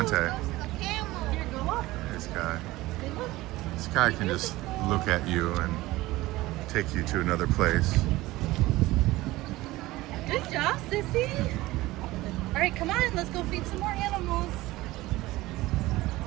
There's Sky. Sky can just look at you and take you to another place. Good job, Sissy. All right, come on, let's go feed some more animals.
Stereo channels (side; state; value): left; quieter; 18.5 dB